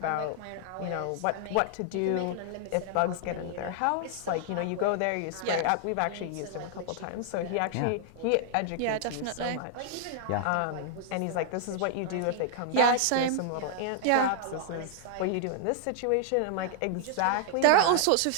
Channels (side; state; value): both; different; correlation -0.01